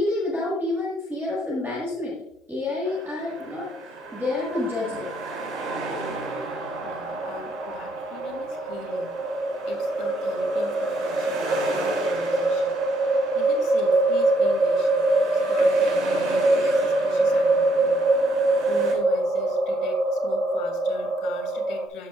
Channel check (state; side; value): normal; both; correlation 0.71